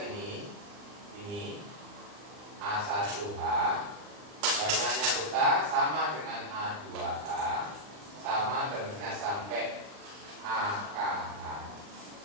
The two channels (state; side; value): late; left; 39 ms